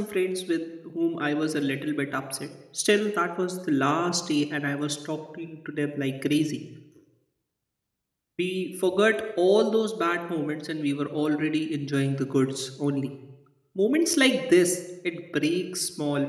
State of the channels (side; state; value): both; identical; correlation 1.00